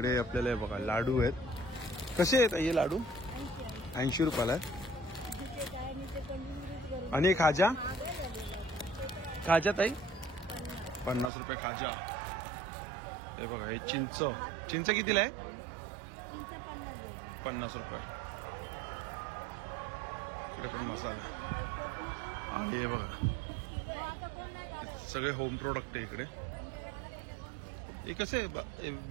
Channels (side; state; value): left; drops out; at 11.3 s